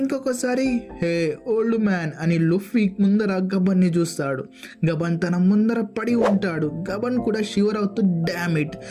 ఇంకొకసారి హే ఓల్డ్ మ్యాన్ అని లుఫీ ముందర గబన్ ని చూస్తాడు. గబన్ తన ముందర పడి ఉంటాడు. గబన్ కూడా షివర్ అవుతూ డామ్ ఇట్,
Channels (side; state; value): both; identical; correlation 1.00